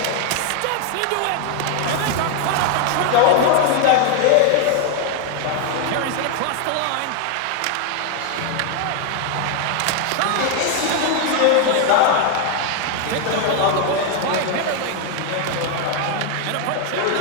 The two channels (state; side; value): different; both; correlation 0.01